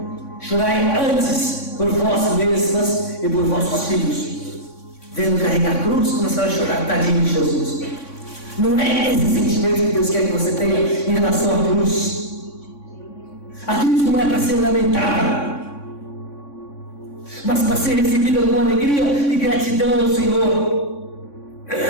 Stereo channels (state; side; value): late; right; 3.6 ms